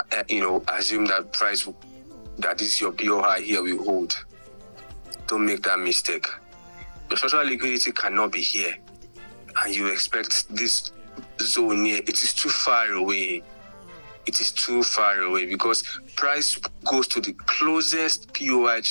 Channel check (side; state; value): both; inverted; correlation -1.00